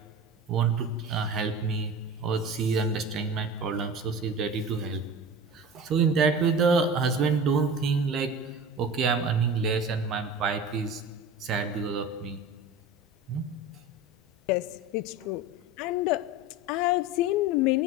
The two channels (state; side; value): normal; both; correlation 0.33